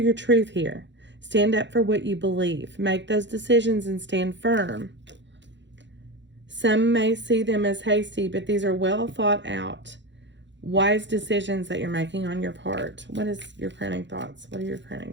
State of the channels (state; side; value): late; left; 0.53 ms